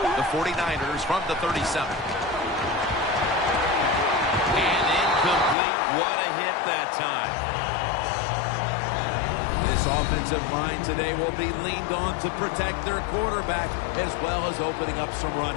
The 49ers from the 37. And incomplete. What a hit that time. This offensive line today will be leaned on to protect their quarterback as well as opening up some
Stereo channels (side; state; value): right; drops out; at 5.6 s